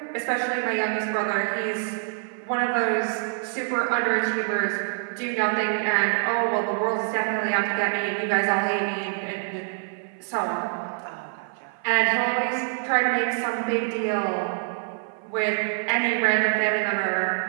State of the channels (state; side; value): silent; left; 55 dB below the other